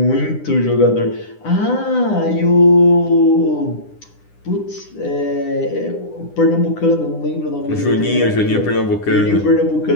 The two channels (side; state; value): right; late; 9.9 ms